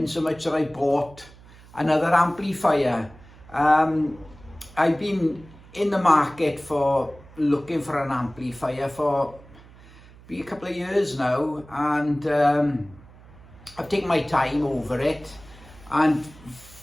so much that I bought another amplifier. I've been in the market for looking for an amplifier for a couple of years now, and I've taken my time over it, and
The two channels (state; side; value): noise; right; hum, 22 dB below the sound